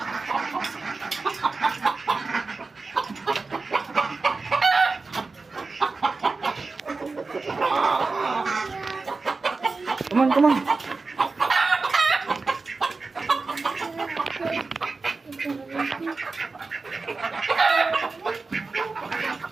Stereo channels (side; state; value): left; quieter; 4.0 dB